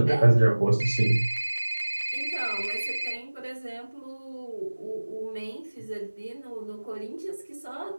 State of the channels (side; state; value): both; inverted; correlation -1.00